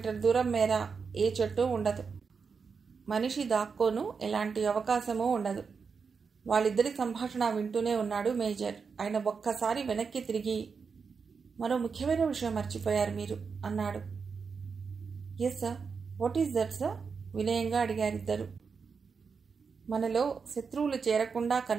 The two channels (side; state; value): left; quieter; 5.5 dB